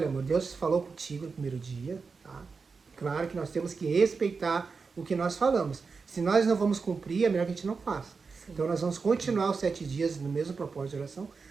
amor, Deus falou contigo no primeiro dia, tá? Claro que nós temos que respeitar o que nós falamos. Se nós não vamos cumprir, é melhor que a gente não faça. Sim. Então nós vamos continuar os 7 dias no mesmo propósito de oração,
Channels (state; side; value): quieter; left; 4.9 dB